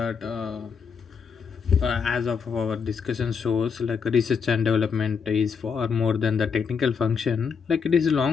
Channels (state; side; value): quieter; right; 6.1 dB